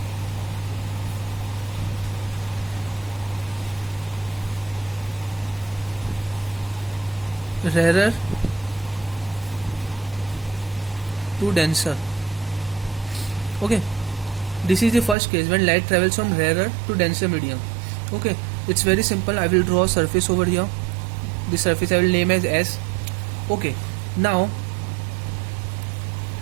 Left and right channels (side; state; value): left; drops out; at 15.2 s